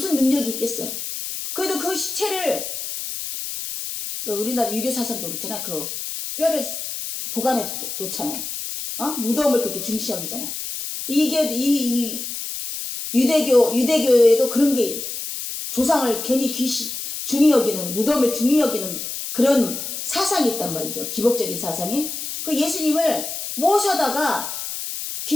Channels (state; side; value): noise; left; hiss, 6 dB below the sound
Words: 능력이 있겠어요. 그래도 그 시체를, 우리나라 유교사상도 그렇잖아요. 그 뼈를 보관해 놓잖아요. 무덤을 그렇게 중시 여기잖아요. 이게 이 유대교에도 그런 게, 조상을 괜히 중히 여기는, 무덤을 중히 여기는 그런 사상이 있단 말이죠. 기복적인 사상이. 그 예수님을 모셔다가